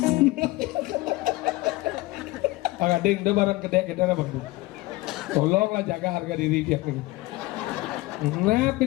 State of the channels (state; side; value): quieter; right; 19.8 dB